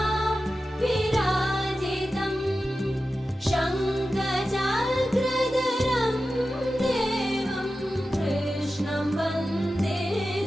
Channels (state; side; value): normal; both; correlation 0.93